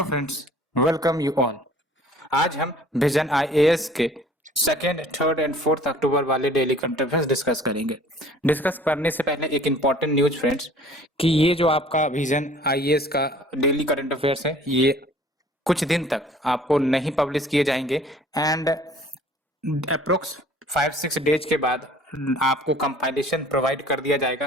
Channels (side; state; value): both; normal; correlation 0.51